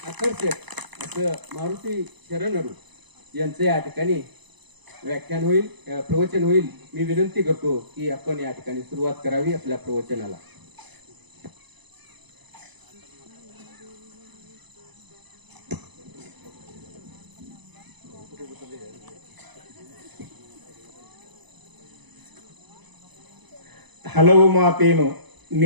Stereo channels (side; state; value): left; late; 1.0 ms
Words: आकर्षक असं मारुती शरणरू यांचे या ठिकाणी व्याख्यान होईल, प्रवचन होईल. मी विनंती करतो की आपण या ठिकाणी सुरुवात करावी आपल्या प्रवचनाला. ಹಲವು ಮಾತೇನು